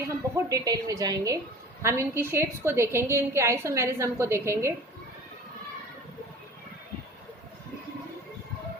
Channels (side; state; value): both; normal; correlation 0.41